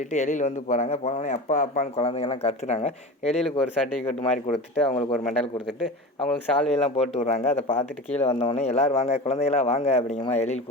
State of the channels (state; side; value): normal; both; correlation 0.30